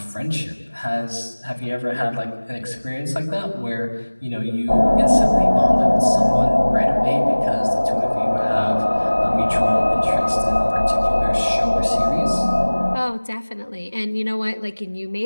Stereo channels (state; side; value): inverted; both; correlation -1.00